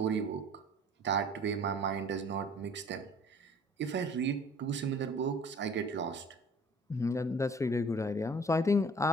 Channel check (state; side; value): normal; both; correlation 0.50